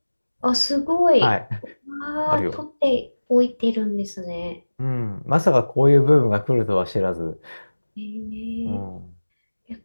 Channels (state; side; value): inverted; both; correlation -1.00